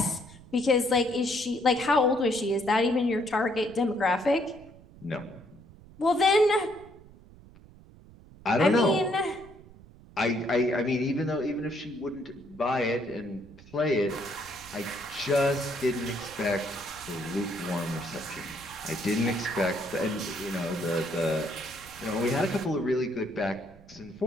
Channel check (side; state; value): right; noise; rumble, 22 dB below the sound